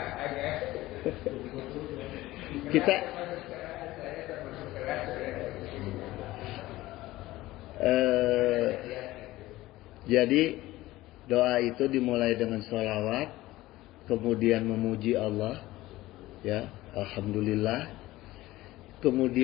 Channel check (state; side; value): quieter; right; 17.4 dB